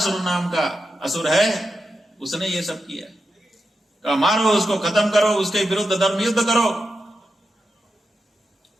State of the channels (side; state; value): both; normal; correlation 0.89